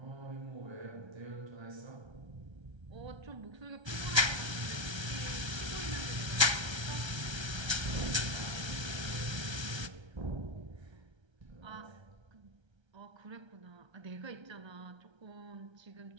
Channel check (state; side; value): late; left; 1.3 ms